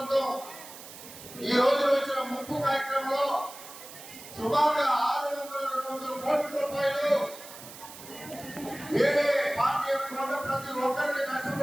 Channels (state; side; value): noise; right; hiss, 15 dB below the sound